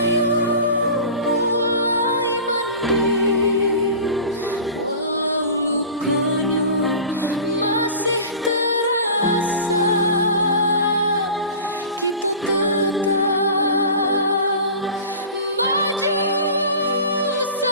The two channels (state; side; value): inverted; both; correlation -0.37